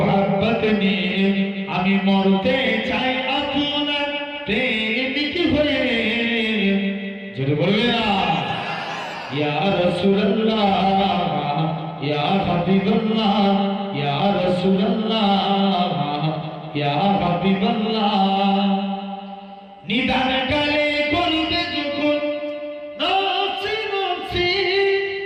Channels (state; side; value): identical; both; correlation 1.00